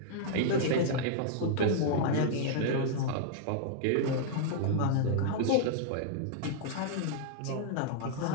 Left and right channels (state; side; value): different; both; correlation -0.01